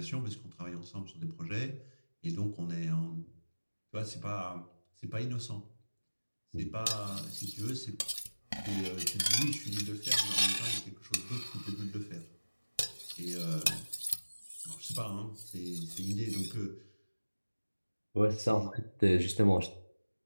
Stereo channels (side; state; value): both; inverted; correlation -1.00